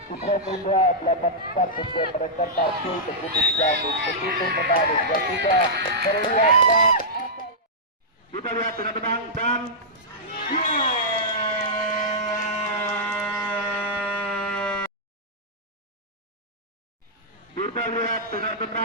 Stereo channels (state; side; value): normal; both; correlation -0.11